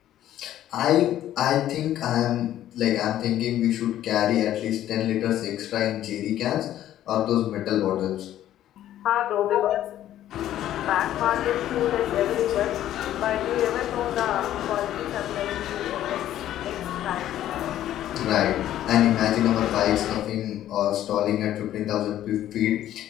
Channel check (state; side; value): quieter; right; 12.4 dB